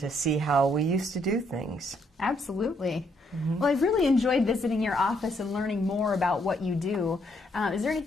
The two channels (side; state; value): both; normal; correlation 0.72